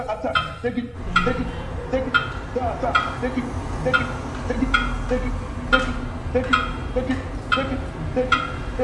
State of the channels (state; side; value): identical; both; correlation 1.00